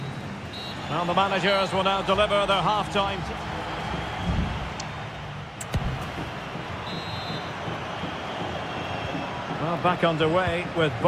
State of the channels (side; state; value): both; identical; correlation 1.00